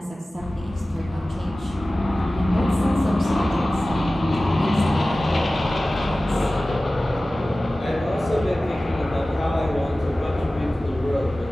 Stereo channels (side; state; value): both; normal; correlation 0.97